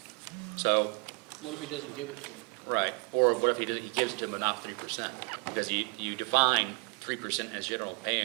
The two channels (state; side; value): quieter; left; 30.1 dB